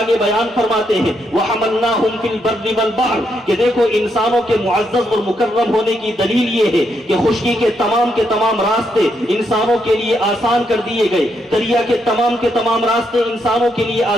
بیان فرماتے ہیں وَحَمَلْنَاهُمْ فِي الْبَرِّ وَالْبَحْرِ کہ دیکھو انسانوں کے معزز اور مکرم ہونے کی دلیل یہ ہے کہ خشکی کے تمام راستے انسانوں کے لیے آسان کر دیے گئے، دریا کے تمام راستے انسانوں کے لیے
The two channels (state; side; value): normal; both; correlation 0.78